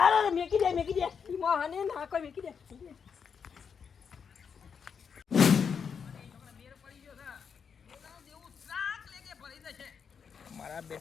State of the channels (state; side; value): quieter; right; 6.6 dB